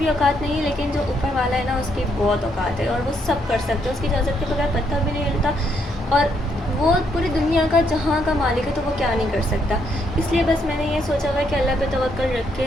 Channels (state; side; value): normal; both; correlation 0.74